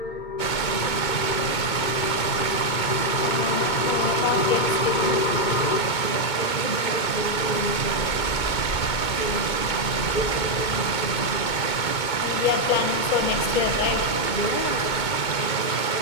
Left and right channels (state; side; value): late; right; 2.2 ms